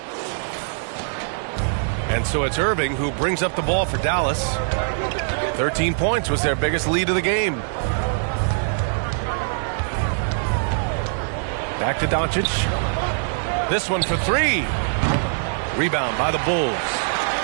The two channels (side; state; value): left; silent; digital silence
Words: And so it's Irving who brings up the ball for Dallas. 13 points was their biggest lead of the game. Back to Doncic. This one for 3. Rebound by the Bulls.